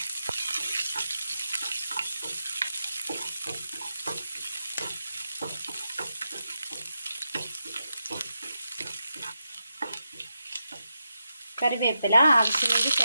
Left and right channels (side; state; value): both; inverted; correlation -0.87